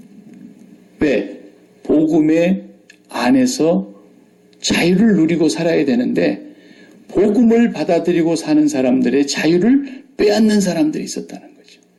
왜? 복음의 안에서 자유를 누리고 살아야 되는데 복음을 받아들이고 사는 사람들의 자유를 빼앗는 사람들이 있었다는 거죠.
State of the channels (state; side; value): identical; both; correlation 1.00